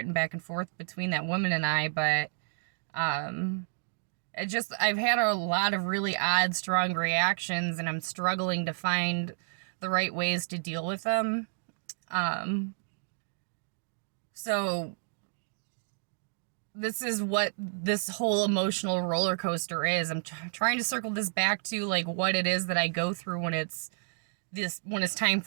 back and forth between that woman and I, but I've had a lot of really odd, strong reactions, and I'm struggling to find the right ways to deal with them. So this is what this whole emotional roller coaster is. I'm trying to circle this back to like what it is that I go through when it's time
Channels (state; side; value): silent; left; digital silence